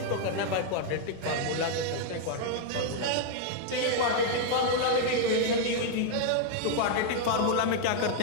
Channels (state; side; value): different; both; correlation 0.00